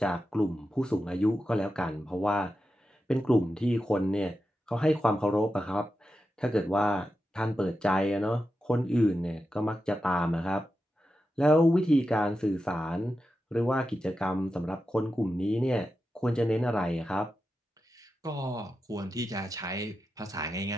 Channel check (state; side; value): normal; both; correlation 0.90